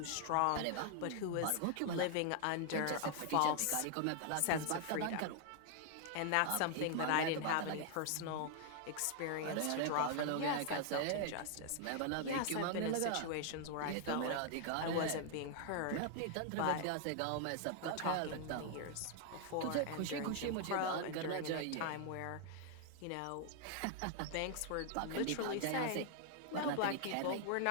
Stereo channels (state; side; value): different; both; correlation 0.00